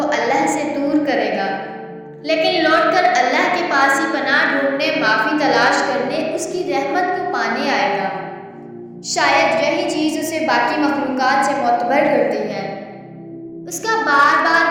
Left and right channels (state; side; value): identical; both; correlation 1.00